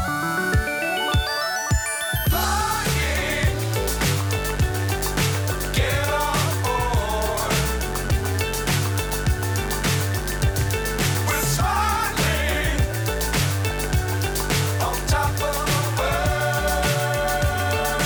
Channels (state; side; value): identical; both; correlation 1.00